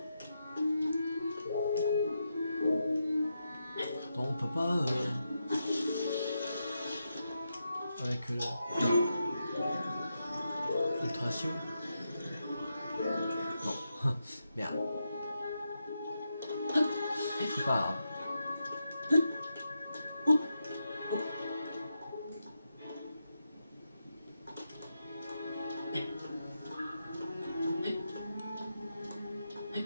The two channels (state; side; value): inverted; both; correlation -0.85